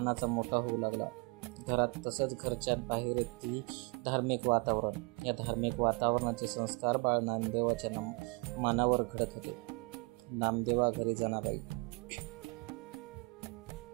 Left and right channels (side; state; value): left; quieter; 28.0 dB